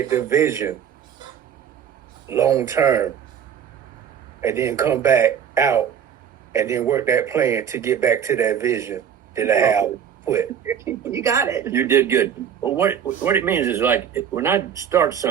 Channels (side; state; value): left; quieter; 8.5 dB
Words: the vision long term and then come back out and then work that plan to get back to that vision that I have put. You got it. You did good. Well, what it means is like when I start